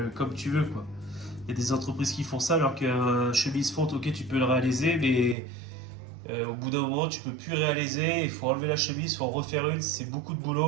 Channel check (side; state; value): left; drops out; at 5.4 s